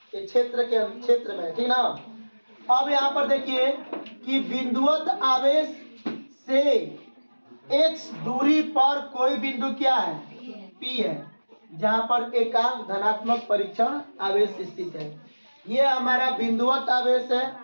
क्षेत्र में, ठीक ना। अब यहाँ पर देखिए कि बिंदुवत आवेश से X दूरी पर कोई बिंदु क्या है? P है, जहाँ पर एकांक धनात्मक परीक्षण आवेश स्थित है। ये हमारा बिंदुवत आवेश है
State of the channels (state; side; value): inverted; both; correlation -1.00